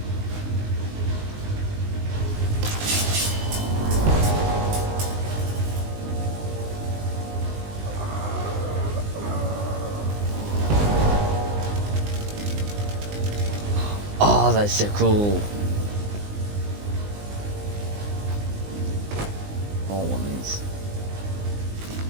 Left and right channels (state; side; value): late; left; 19 ms